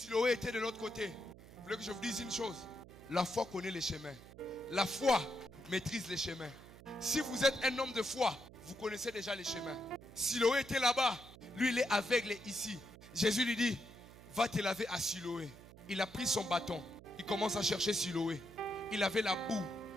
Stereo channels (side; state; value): right; noise; hum, 18 dB below the sound